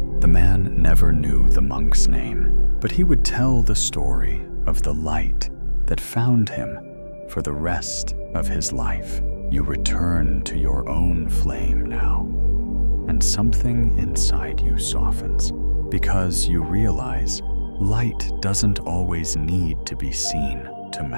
The man never knew the monk's name, but he would tell the story of the light that found him for the rest of his life. You return to your own flame now, and something inside you softens, because you realize light doesn't always need to be seen to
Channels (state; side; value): inverted; both; correlation -1.00